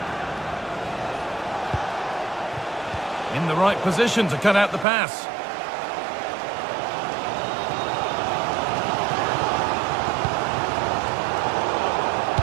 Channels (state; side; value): drops out; left; at 4.9 s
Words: In the right position to cut out the pass.